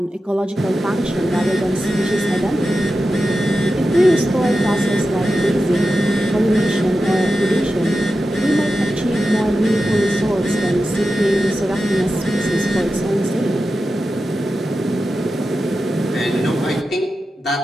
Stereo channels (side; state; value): both; normal; correlation 0.91